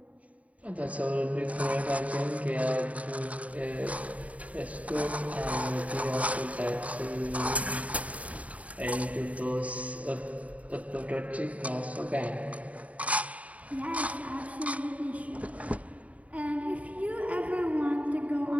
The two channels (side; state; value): left; late; 0.068 ms